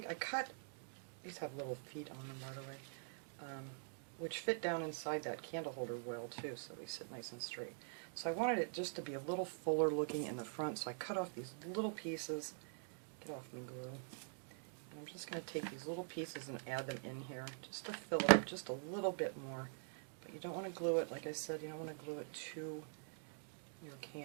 these have little feet on them, by the way, which fit down inside that candle holder well too, so they sit nice and straight. So I wanted it just to be a little fuller looking in the front, so I cut off these little pieces. Get off me glue. And I'm just going to take these little pieces and add them in here, just to fill it up just a little bit more. But you don't want to glue it, like I said, you don't want to glue it to your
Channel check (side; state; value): left; silent; digital silence